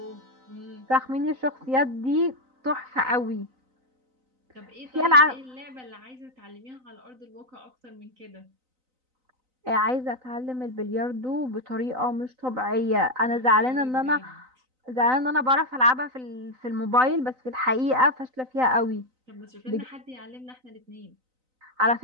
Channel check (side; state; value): left; late; 3.9 ms